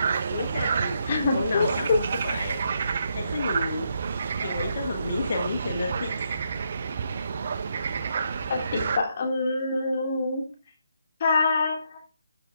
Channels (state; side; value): inverted; both; correlation -0.77